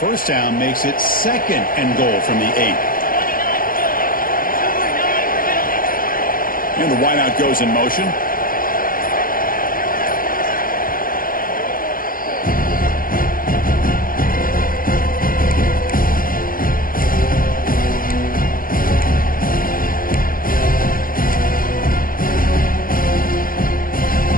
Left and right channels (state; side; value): late; right; 0.41 ms